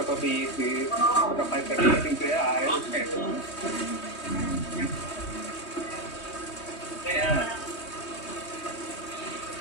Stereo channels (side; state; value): right; late; 3.2 ms